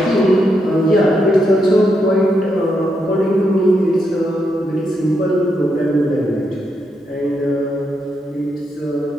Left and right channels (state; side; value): normal; both; correlation 0.81